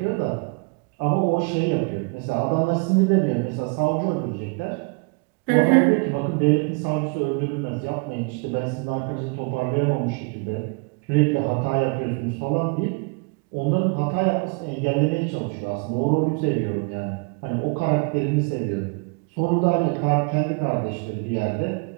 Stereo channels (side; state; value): left; quieter; 32.2 dB